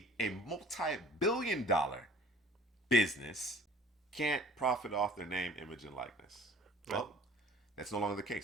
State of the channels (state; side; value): normal; both; correlation 0.50